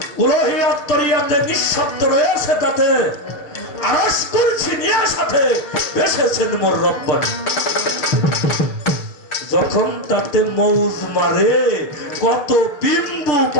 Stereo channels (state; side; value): late; right; 6.7 ms